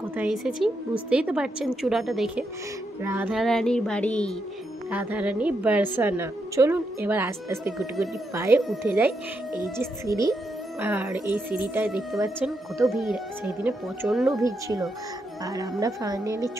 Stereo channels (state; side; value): normal; both; correlation 0.81